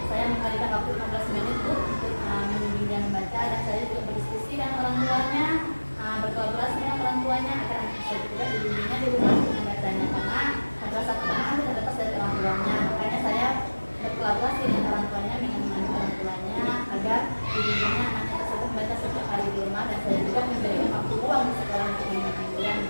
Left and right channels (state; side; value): inverted; both; correlation -1.00